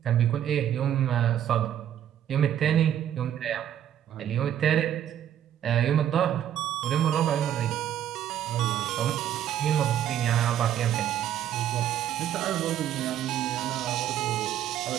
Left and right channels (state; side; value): quieter; left; 10.6 dB